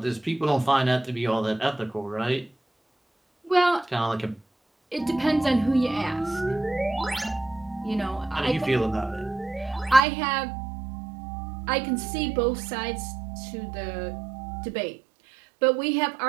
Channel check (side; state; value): left; drops out; at 10.0 s